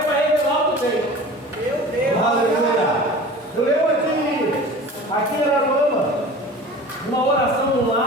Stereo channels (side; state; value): both; normal; correlation 0.39